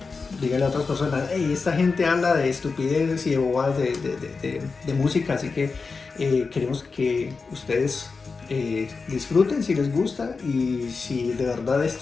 díganle a otras personas: hey, esta gente habla de estupideces y de bobadas de música, así que queremos que ustedes disfruten si les gusta, y si de verdad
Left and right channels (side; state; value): right; quieter; 4.5 dB